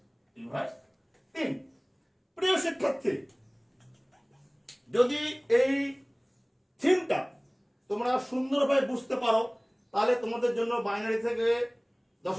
রিভার্স 3। প্রিয় শিক্ষার্থী, যদি এই থিমটা তোমরা সুন্দরভাবে বুঝতে পারো তাহলে তোমাদের জন্য বাইনারি থেকে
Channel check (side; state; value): both; identical; correlation 1.00